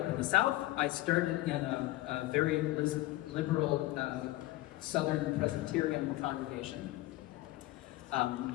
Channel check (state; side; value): quieter; right; 17.3 dB